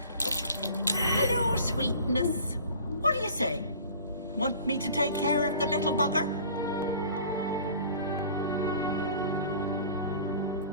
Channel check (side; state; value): both; inverted; correlation -0.45